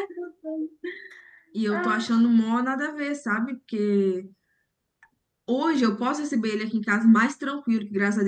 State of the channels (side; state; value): both; identical; correlation 1.00